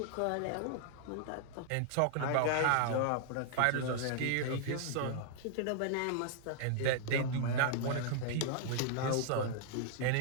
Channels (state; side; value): different; both; correlation -0.01